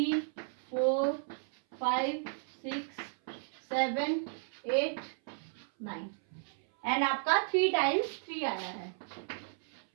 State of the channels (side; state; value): left; silent; 55 dB below the other